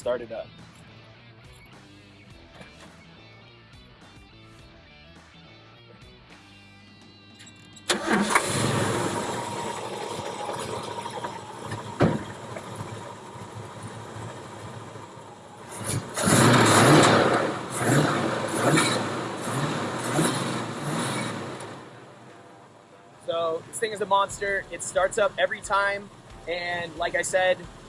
it up. So this thing is a monster. It starts up every time, and like I said,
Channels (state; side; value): identical; both; correlation 1.00